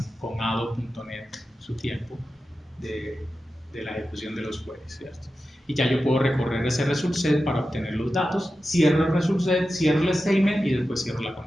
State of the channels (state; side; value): normal; both; correlation 0.92